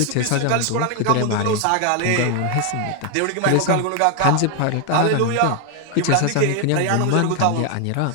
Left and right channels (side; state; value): both; different; correlation 0.01